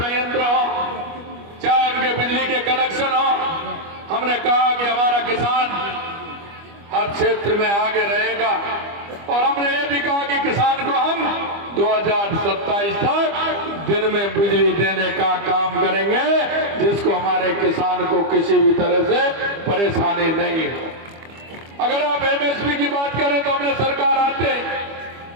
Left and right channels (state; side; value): late; left; 25 ms